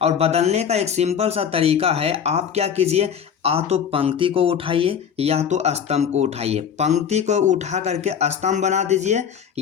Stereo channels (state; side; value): quieter; right; 7.8 dB